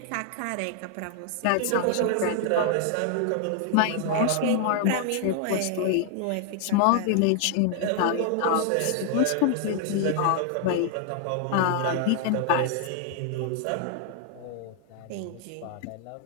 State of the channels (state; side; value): different; both; correlation 0.00